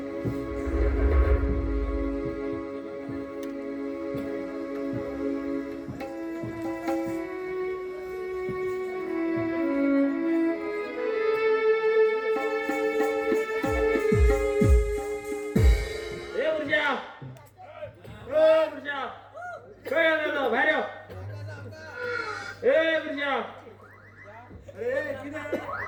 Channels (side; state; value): both; identical; correlation 1.00